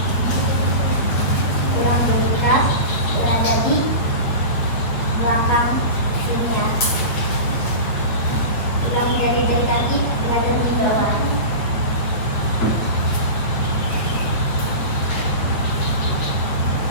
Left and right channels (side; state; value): right; late; 8.2 ms